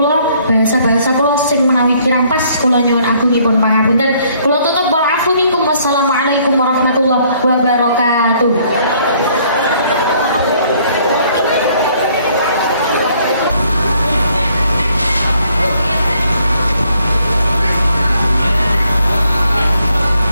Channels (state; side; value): inverted; both; correlation -0.65